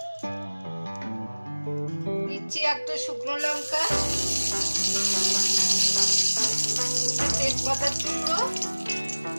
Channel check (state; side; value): inverted; both; correlation -1.00